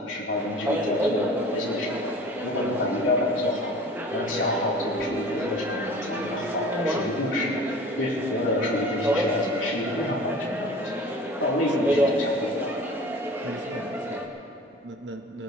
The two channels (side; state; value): both; normal; correlation 0.42